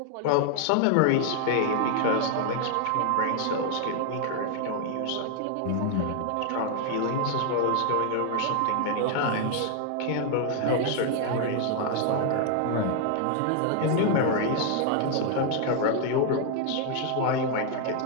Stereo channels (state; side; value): different; both; correlation 0.00